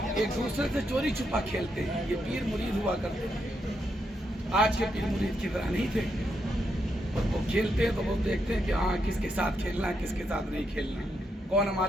एक दूसरे से चोरी छुपा खेलते हैं। ये पीर मुरीद हुआ करते थे, आज के पीर मुरीद की तरह नहीं थे। वो खेलते हैं तो वो देखते हैं कि हाँ किसके साथ खेलना है, किसके साथ नहीं खेलना, कौन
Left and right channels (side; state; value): both; normal; correlation 0.81